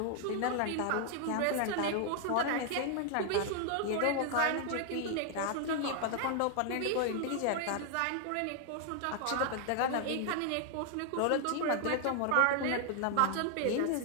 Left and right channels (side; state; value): both; different; correlation 0.00